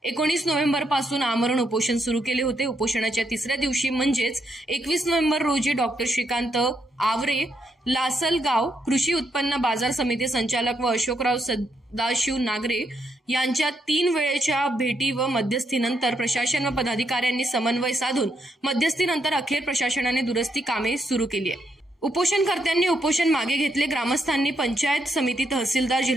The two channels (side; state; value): both; normal; correlation 0.78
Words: 19 नोव्हेंबरपासून आमरण उपोषण सुरू केले होते। उपोषणाच्या तिसऱ्या दिवशी म्हणजेच 21 नोव्हेंबर रोजी डॉक्टर श्रीकांत आवरे, लासलगाव कृषी उत्पन्न बाजार समिती संचालक व अशोकराव सदाशिव नागरे यांच्या 3 वेळेच्या भेटी व मध्यस्थीनंतर प्रशासन व पदाधिकाऱ्यांनी समन्वय साधून मध्यस्थीनंतर अखेर प्रशासनाने दुरुस्ती कामे सुरू केली आहे। उपोषणकर्त्यांनी उपोषण मागे घेतले। ग्रामस्थांनी पंचायत समिती, तहसीलदार,